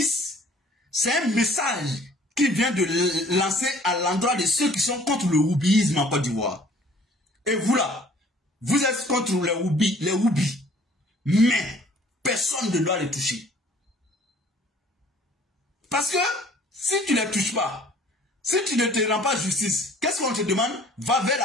». C'est un message qu'il vient de lancer à l'endroit de ceux qui sont contre le houbisme en Côte d'Ivoire. Et vous là, vous êtes contre les houbis. Mais personne ne doit les toucher. Parce que si tu ne les touches pas, si tu ne te rends pas justice, qu'est-ce qu'on te demande? Va vers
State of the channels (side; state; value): both; normal; correlation 0.54